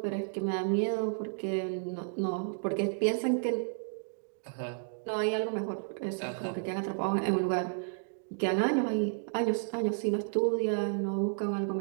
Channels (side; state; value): left; silent; digital silence